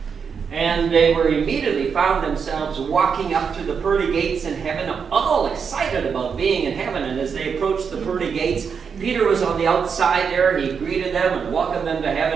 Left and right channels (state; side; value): quieter; left; 6.3 dB